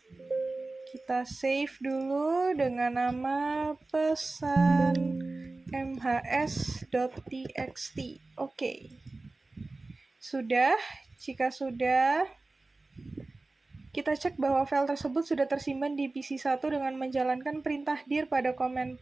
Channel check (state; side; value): quieter; left; 3.3 dB